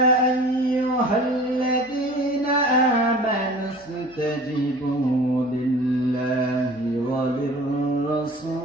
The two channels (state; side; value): noise; left; hum, 28 dB below the sound